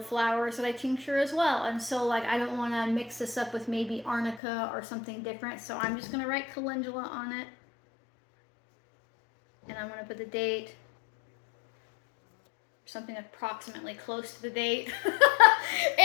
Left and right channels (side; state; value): right; drops out; at 4.4 s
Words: flowers that I tincture as well, and so like I don't want to mix this up with maybe arnica or something different, so I'm just going to write calendula on it, and I'm going to put the date, something approximately close to the date.